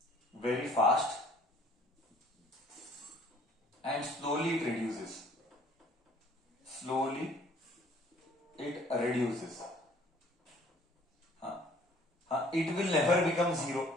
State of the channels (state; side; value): normal; both; correlation 0.56